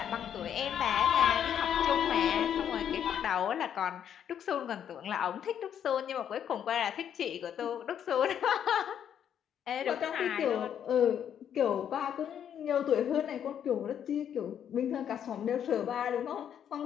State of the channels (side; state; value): right; quieter; 9.1 dB